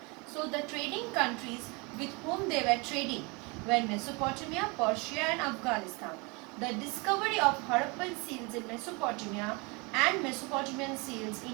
So the trading countries with whom they were trading were Mesopotamia, Persia and Afghanistan. The discovery of Harappan seals in Mesopotamia and Mesopotamian seals in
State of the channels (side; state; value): left; quieter; 28.7 dB